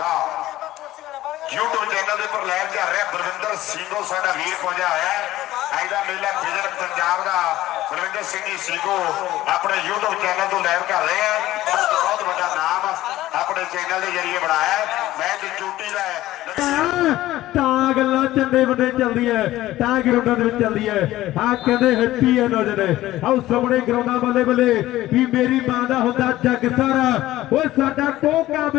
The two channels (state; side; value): quieter; right; 15.5 dB